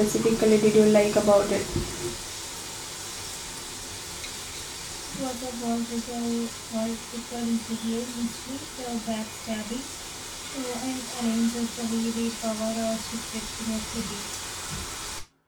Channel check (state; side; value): identical; both; correlation 1.00